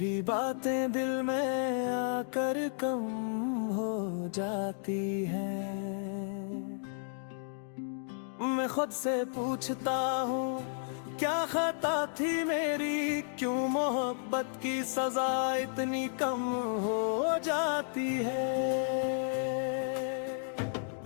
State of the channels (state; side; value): silent; right; digital silence